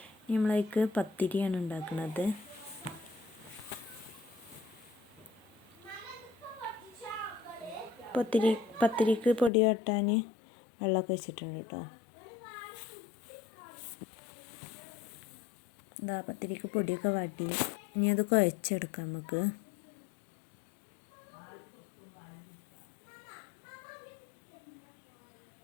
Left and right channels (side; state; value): right; drops out; at 9.5 s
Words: നമ്മളതിലേക്ക് പത്തിരിയാണ് ഉണ്ടാക്കുന്നത്. പത്തിരിക്ക് പൊടി വാട്ടാൻ വെള്ളമൊക്കെ വെച്ചിട്ടുണ്ട് കേട്ടോ. ഇതാ പത്തിരിക്ക് പൊടിയൊക്കെ വാട്ടി ഇനി അത് കുഴച്ചെടുക്കാം നമുക്ക്.